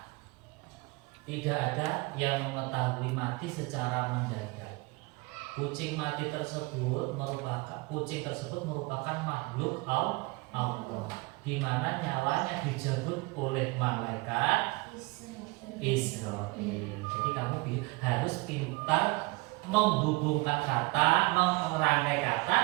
tidak ada yang mengetahui mati secara mendadak. Kucing tersebut merupakan makhluk Allah, di mana nyawanya dijemput oleh malaikat Israel. Jadi kamu harus pintar menghubungkan kata, merangkai kata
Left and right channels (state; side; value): quieter; left; 24.6 dB